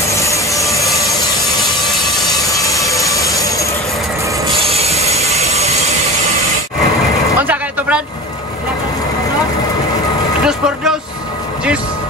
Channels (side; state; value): both; normal; correlation 0.34